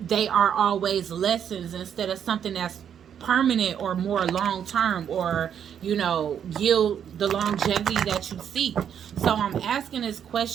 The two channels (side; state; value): left; quieter; 8.7 dB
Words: are always lessons instead of something that's permanent or more long term, or, you know, yield the longevity that you seek. So I'm asking this